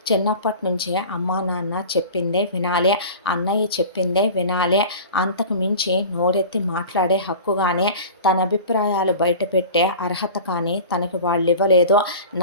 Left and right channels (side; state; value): both; inverted; correlation -0.37